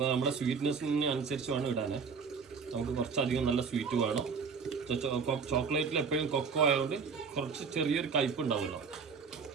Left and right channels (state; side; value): quieter; left; 5.6 dB